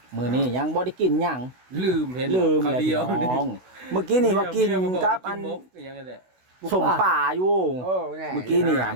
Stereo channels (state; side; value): late; left; 16 ms